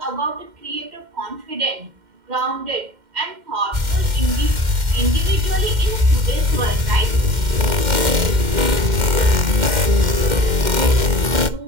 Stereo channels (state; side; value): late; left; 2.1 ms